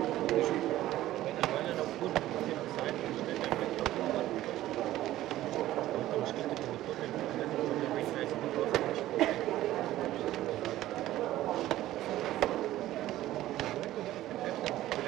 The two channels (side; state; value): left; quieter; 14.7 dB